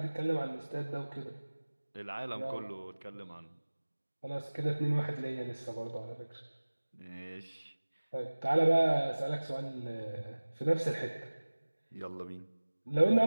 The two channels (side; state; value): both; inverted; correlation -1.00